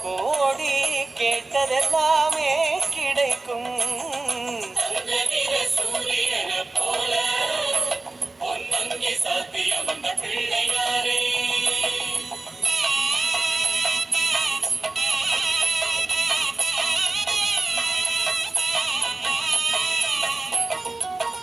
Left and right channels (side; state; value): left; quieter; 3.2 dB